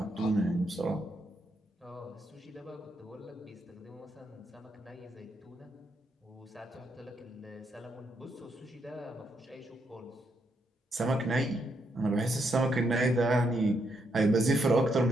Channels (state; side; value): normal; both; correlation 0.78